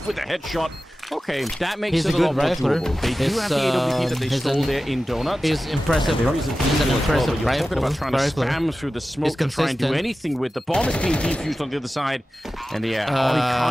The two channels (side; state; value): both; normal; correlation 0.95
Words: with a headshot. Okay, that makes He's it a a lot good more rifler. doable. They do have the AWP that they stole there in Donuts. He's impressive. There is He's an impressive You're talking about trying to rifler. spam through the smoke to try and do anything with the bomb is being defused on the other side. And yeah, he